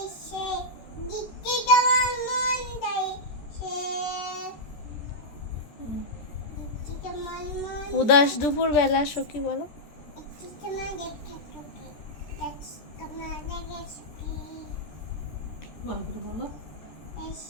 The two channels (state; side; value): late; right; 13 ms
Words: দিতে তোমার মন চাইছে দিতে তোমার মন উদাস দুপুর বেলা সখী বলো। একটু তোমার দেখতে তোকে তোমার দেখে সুখী ভালো করে বলো।